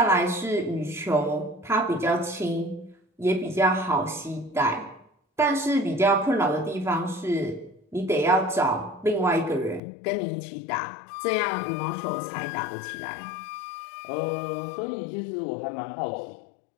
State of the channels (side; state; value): right; drops out; at 9.8 s